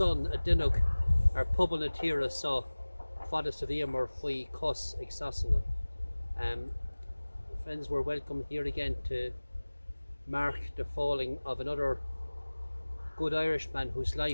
a duineog ar pobal na tíre so fada sa bhí mar faoi cos ag sasanna. Friends, we're welcome here again to mark the falling of another good Irishman whose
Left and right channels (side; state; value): both; inverted; correlation -1.00